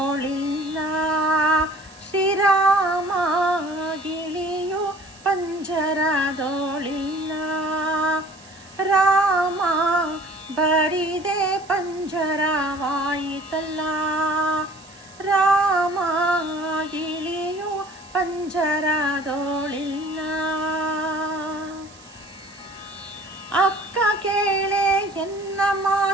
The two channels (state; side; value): noise; right; hiss, 23 dB below the sound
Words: ಶ್ರೀರಾಮ ಗಿಳಿಯು ಪಂಜರದೊಳಿಲ್ಲ. ರಾಮ ಬರಿದೆ ಪಂಜರವಾಯಿತಲ್ಲ. ರಾಮ ಗಿಳಿಯು ಪಂಜರದೊಳಿಲ್ಲ. ಅಕ್ಕ ಕೇಳೆ ಎನ್ನ